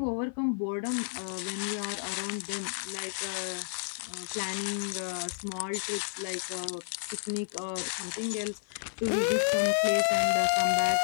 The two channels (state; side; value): silent; right; digital silence